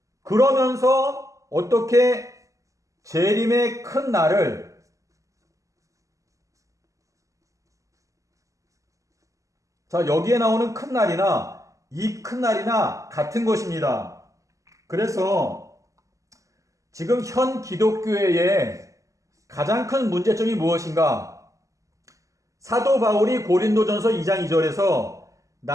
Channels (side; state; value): left; late; 0.16 ms